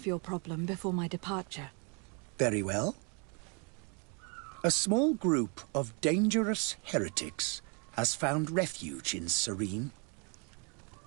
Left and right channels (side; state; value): left; quieter; 35.2 dB